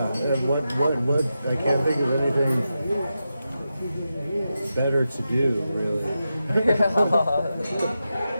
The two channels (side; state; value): both; inverted; correlation -0.89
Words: And what? I can't think of anything better to do. Really.